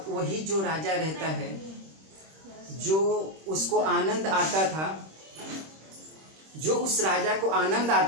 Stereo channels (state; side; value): late; left; 26 ms